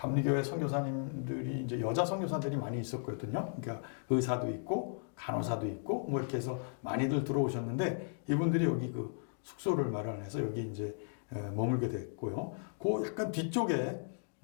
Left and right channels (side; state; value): right; silent; digital silence